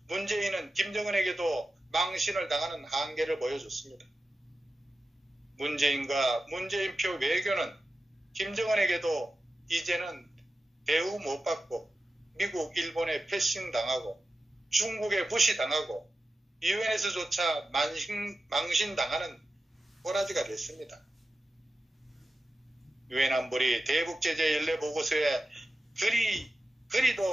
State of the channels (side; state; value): both; normal; correlation 0.92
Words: 문재인은 김정은에게도 망신을 당하는 한계를 보여줬습니다. 문재인과 문재인표 외교는 김정은에게도 이제는 대우 못 받고 미국, 일본에 패싱당하고 중국에 무시당하고 유엔에서조차 망신당하는 꼬라지가 됐습니다. 유엔 안보리 대북제재 연례 보고서에